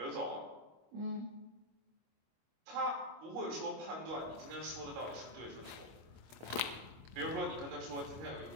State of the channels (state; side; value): late; left; 25 ms